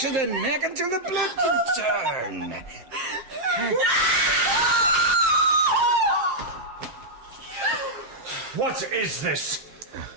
the neck until the blood can turn. What is this?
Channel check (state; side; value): late; left; 7.7 ms